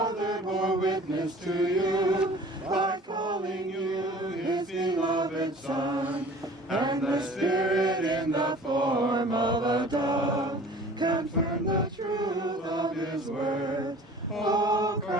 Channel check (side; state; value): both; normal; correlation 0.46